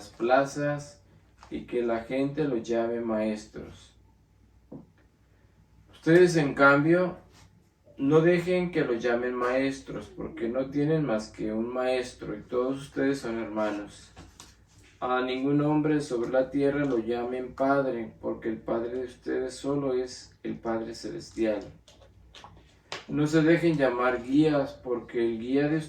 plazas y que la gente los llame maestros. Ustedes, en cambio, no dejen que los llamen maestros, porque no tienen más que un maestro y todos ustedes son hermanos. A ningún hombre sobre la tierra lo llamen Padre, porque el Padre de ustedes solo es el Padre Celestial. No se dejen llamar guías, porque el guía de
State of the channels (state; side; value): identical; both; correlation 1.00